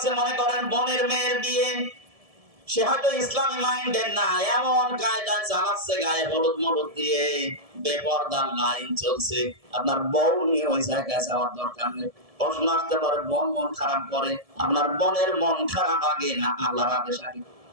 মনে করেন বোনের মেয়ের বিয়ে, সে হয়তো ইসলামী মাইন্ডের না, এমন কায়দা চালাচ্ছে গায়ে হলুদ মলুদ দিয়ে, বেপরদার লাইন চলছে। আপনার বউ নিয়ে ওই জায়গায় যাওয়ার দরকার নেই। প্রশ্ন আসতে পারে বোন মন খারাপ করে, আপনার বোনের মন খারাপ আগে না আল্লাহর আদেশ আগে?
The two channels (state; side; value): late; left; 1.7 ms